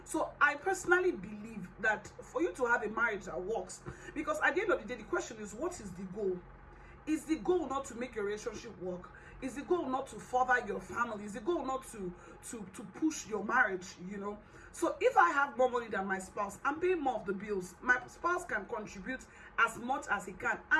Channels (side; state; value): both; identical; correlation 1.00